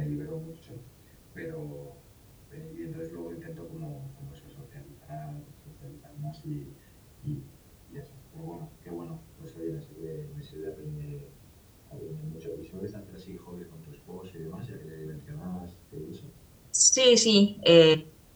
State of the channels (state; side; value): identical; both; correlation 1.00